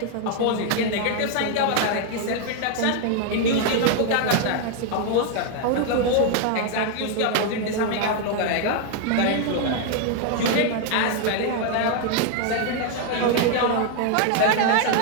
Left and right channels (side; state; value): both; different; correlation 0.01